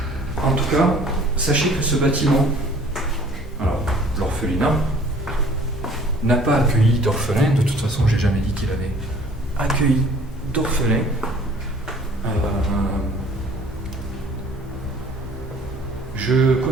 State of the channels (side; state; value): both; normal; correlation 0.53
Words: En tout cas, sachez que ce bâtiment, alors l'orphelinat, n'a pas accueilli d'orphelins. De toute façon, j'ai jamais dit qu'il avait accueilli d'orphelins. Je